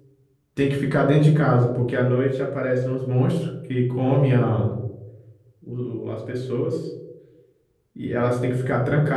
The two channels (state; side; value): identical; both; correlation 1.00